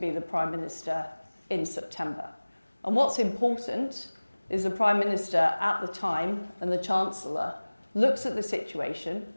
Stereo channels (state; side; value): inverted; both; correlation -1.00